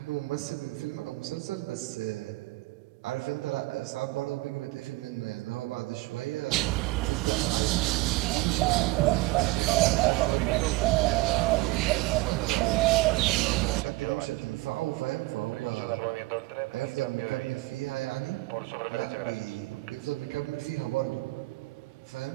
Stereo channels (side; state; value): left; quieter; 20.5 dB